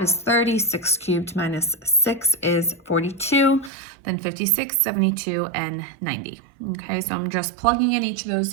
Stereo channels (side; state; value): left; drops out; at 3.7 s